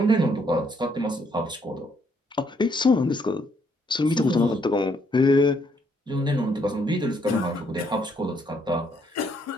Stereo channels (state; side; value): normal; both; correlation 0.70